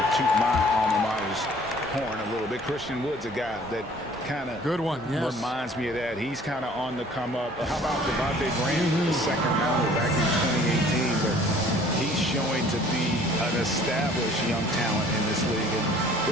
to toot my alma mater's horn a little bit. Christian Wood's a guy that kind of reminds me of that. He's kind of on the come up. How about Devontae Graham, the second rounder back in 2018? But he's showing to be an established young talent in this league. And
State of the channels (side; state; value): both; normal; correlation 0.53